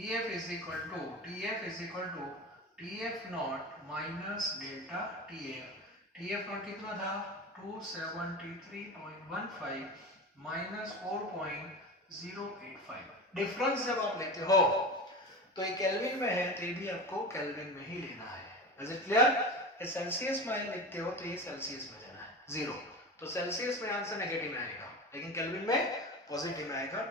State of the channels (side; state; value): both; normal; correlation 0.28